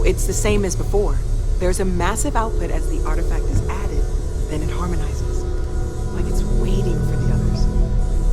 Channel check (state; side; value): identical; both; correlation 1.00